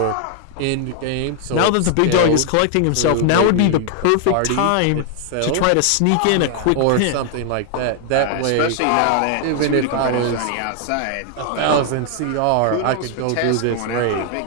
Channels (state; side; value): different; both; correlation 0.00